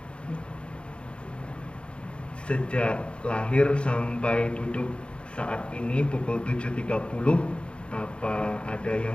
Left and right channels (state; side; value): late; right; 0.057 ms